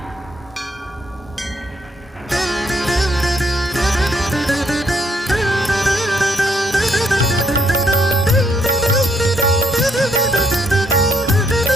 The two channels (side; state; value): both; normal; correlation 0.72